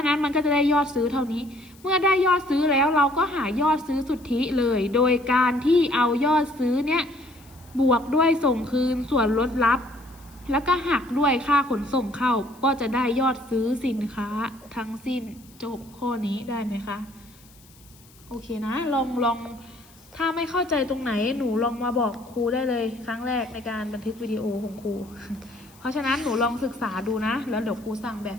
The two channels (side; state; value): left; noise; hiss, 26 dB below the sound